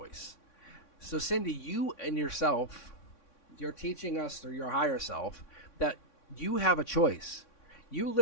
So Cindy, you and yourself, you're teaching us through your higher self that you have a choice. You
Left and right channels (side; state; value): right; late; 3.6 ms